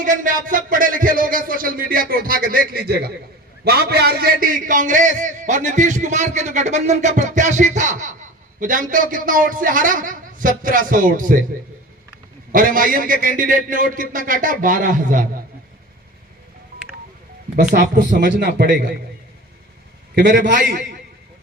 में, आप सब पढ़े लिखे लोग हैं, सोशल मीडिया पे उठा के देख लीजिएगा। वहां पे आरजेडी, कांग्रेस और नीतीश कुमार के जो गठबंधन का प्रत्याशी था, वो जानते हो कितना वोट से हारा? 1700 वोट से। और एमआईएम के कैंडिडेट ने वोट कितना काटा? 12,000। बस आपको समझना पड़ेगा कि मेरे भाई,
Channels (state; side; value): normal; both; correlation 0.36